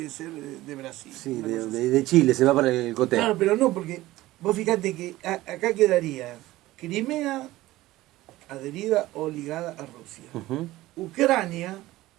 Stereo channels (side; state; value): left; quieter; 17.1 dB